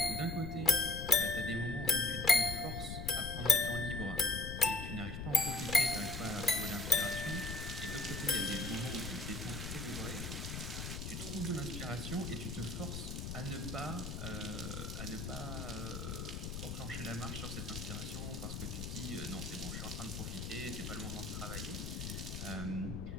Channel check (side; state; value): left; noise; rumble, 5 dB below the sound